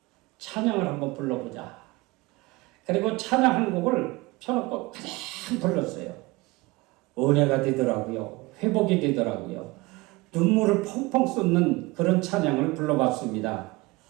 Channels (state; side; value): quieter; left; 22.8 dB